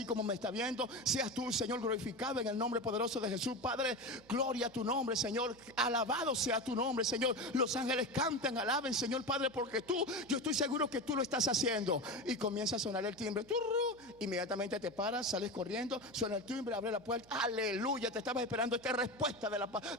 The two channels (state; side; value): noise; right; hum, 25 dB below the sound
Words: como me está viendo. Seas tú, Señor, glorificado en el nombre poderoso de Jesús, Padre, gloria a tu nombre, Señor, alabado sea tu nombre, Señor. Los ángeles cantan, alaben, Señor, Padre, porque yo estoy seguro que tú lo estás haciendo. Y comienza a sonar el timbre, inmediatamente te paras, sales corriendo. Suena el timbre, abre la puerta, aleluya, te estabas esperando esta respuesta de